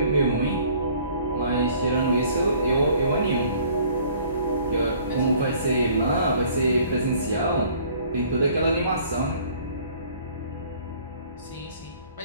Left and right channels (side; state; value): both; inverted; correlation -0.55